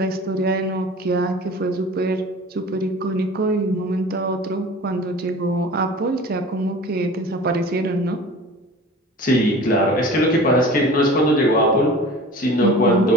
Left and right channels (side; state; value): both; normal; correlation 0.40